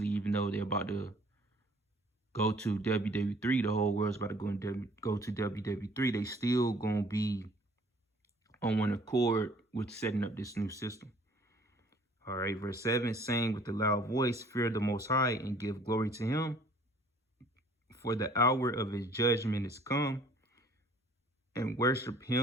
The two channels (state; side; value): normal; both; correlation 0.55